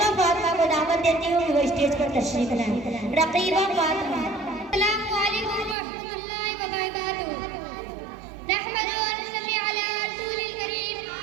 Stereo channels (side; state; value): left; drops out; at 5.8 s